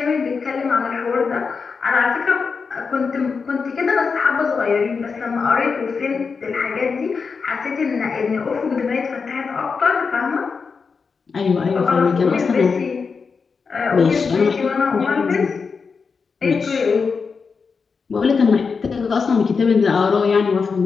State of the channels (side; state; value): right; quieter; 5.2 dB